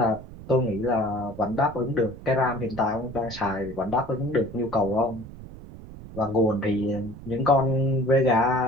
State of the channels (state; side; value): noise; right; rumble, 15 dB below the sound